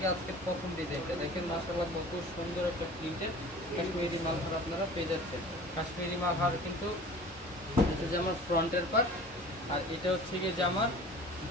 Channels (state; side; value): normal; both; correlation 0.42